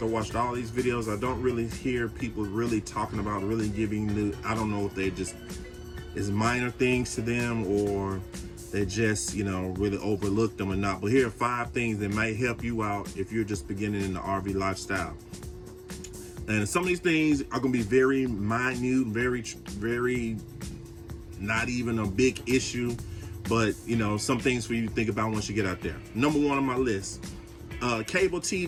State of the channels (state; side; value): identical; both; correlation 1.00